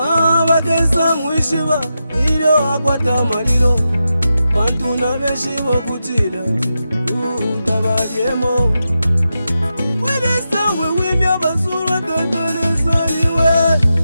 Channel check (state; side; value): inverted; both; correlation -0.88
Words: bagesa mwishiba ilyo akwata malilo bantu na benshi bokutila utabalyemo wedesawe wimya basura totonesaniwe